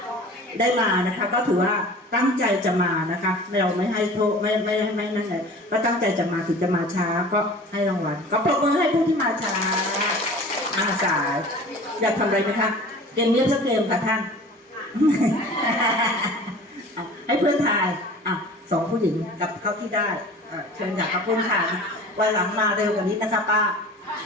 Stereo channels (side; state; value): both; normal; correlation 0.42